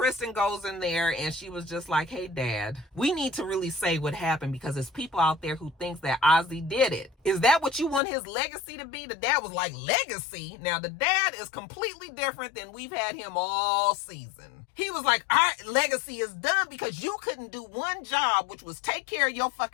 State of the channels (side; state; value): right; drops out; at 8.0 s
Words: goes in there and she was just like, hey, Dad, we need to really say what happened because there's people out there who thinks that Azie did it. Is that what you want his legacy to be? The dad was like, legacy? Now, the dad is completely different than we've had him all season. He was like, our legacy is done because you couldn't do one job, which was take care of your